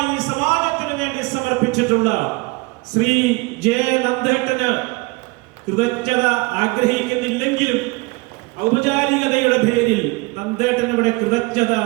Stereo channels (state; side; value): quieter; left; 25.4 dB